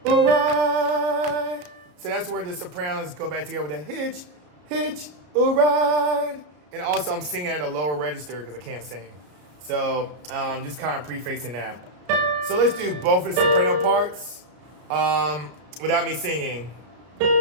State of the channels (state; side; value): late; left; 33 ms